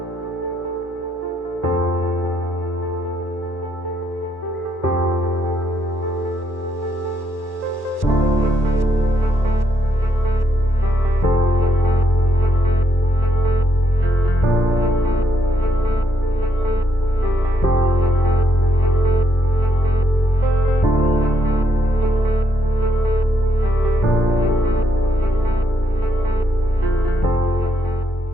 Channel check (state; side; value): late; right; 1.1 ms